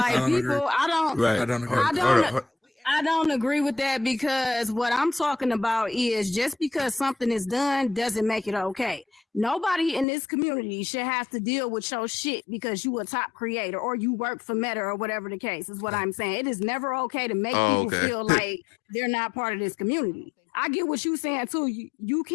people, I don't agree with that, because what I'm talking about is just because something is done doesn't make it okay. Nobody in this community should have to deal with your shit because you a top creator or you work for Meta or whatever the case is. What I'm saying. It is never okay to make people feel like they're not part of this community. I get what you're saying too. You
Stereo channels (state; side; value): drops out; right; at 10.1 s